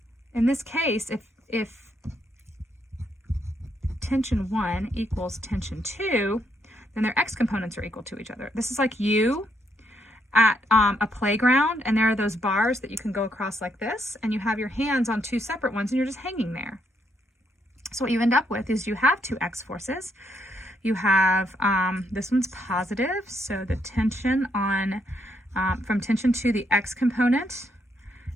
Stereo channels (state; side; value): normal; both; correlation 0.75